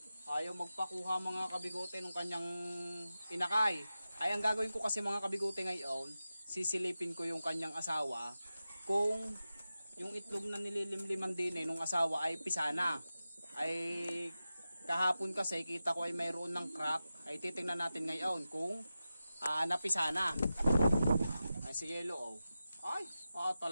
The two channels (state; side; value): inverted; both; correlation -0.93